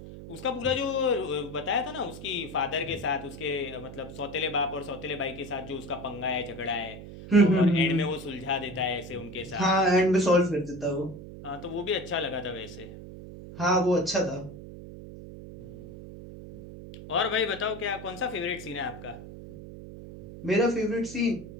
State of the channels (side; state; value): right; noise; hum, 13 dB below the sound